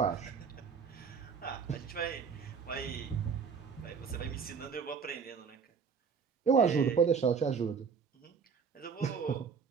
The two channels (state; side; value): quieter; left; 6.1 dB